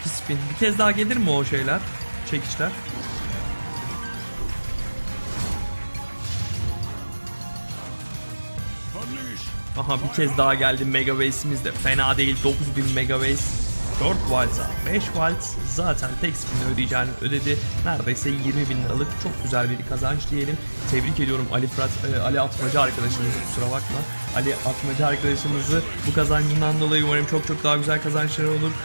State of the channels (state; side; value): inverted; both; correlation -1.00